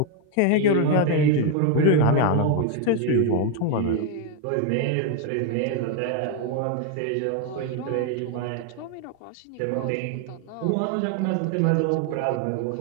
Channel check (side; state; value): both; different; correlation 0.01